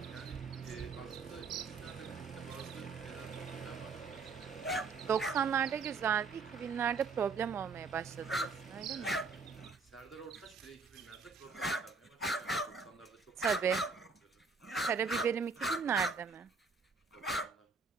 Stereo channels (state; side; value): quieter; left; 4.7 dB